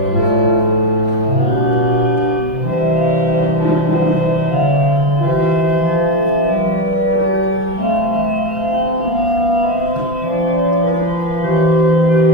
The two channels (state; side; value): late; right; 5.8 ms